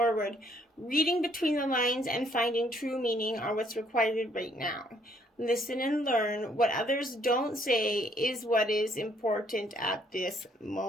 Reading between the lines and finding true meaning are what's required right now. Listen and learn. What others don't say is what is important at this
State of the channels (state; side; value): normal; both; correlation 0.66